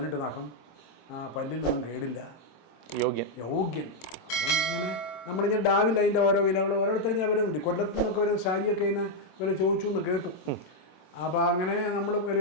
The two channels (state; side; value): late; right; 24 ms